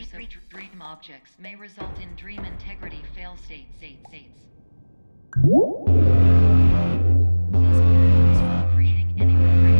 of dream objects may result in dream integrity fail states. Please pause from creating any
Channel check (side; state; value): both; inverted; correlation -1.00